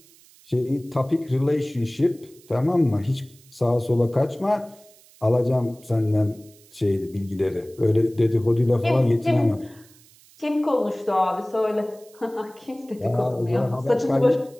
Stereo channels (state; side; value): noise; right; hiss, 27 dB below the sound